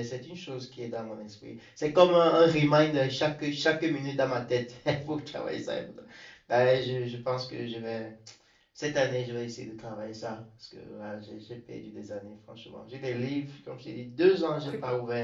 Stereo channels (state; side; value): identical; both; correlation 1.00